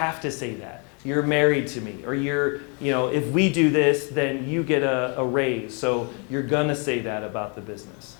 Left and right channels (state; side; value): quieter; right; 36.0 dB